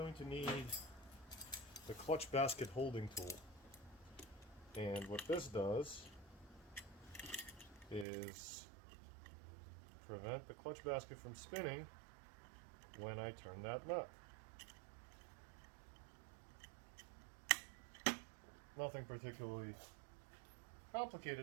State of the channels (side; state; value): left; drops out; at 8.1 s